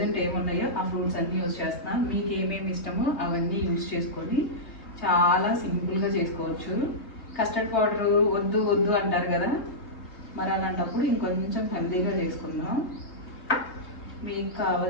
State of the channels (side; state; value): right; late; 3.2 ms